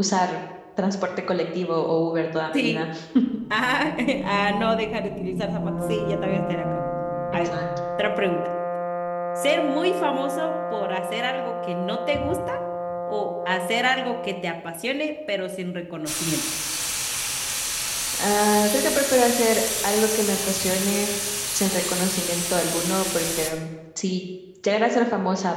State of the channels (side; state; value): both; identical; correlation 1.00